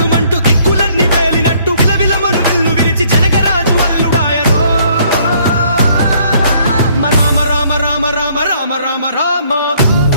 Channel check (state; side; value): inverted; both; correlation -0.63